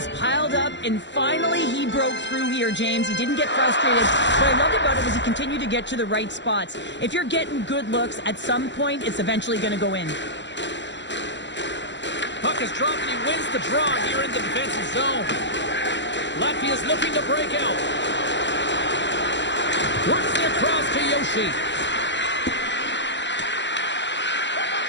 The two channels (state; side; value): late; right; 0.53 ms